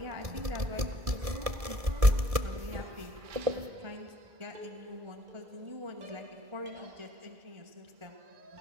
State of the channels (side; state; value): left; late; 1.7 ms